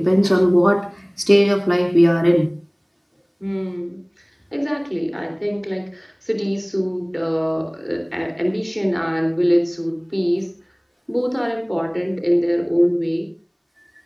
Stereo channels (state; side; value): identical; both; correlation 1.00